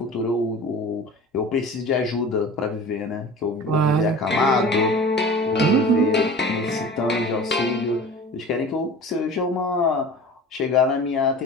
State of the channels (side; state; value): both; normal; correlation 0.39